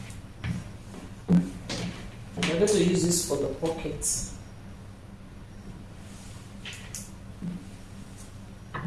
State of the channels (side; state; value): both; identical; correlation 1.00